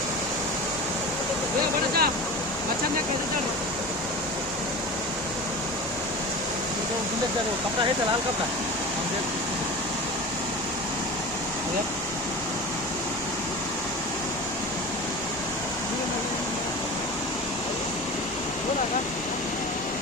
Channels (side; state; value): both; normal; correlation 0.32